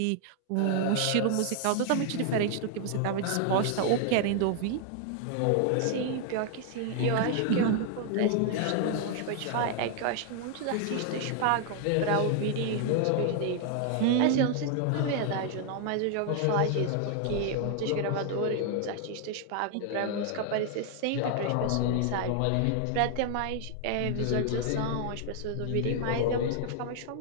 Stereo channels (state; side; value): different; both; correlation 0.00